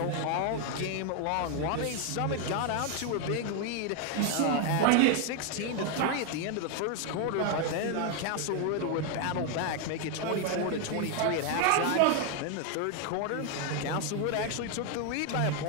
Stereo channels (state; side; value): different; both; correlation 0.01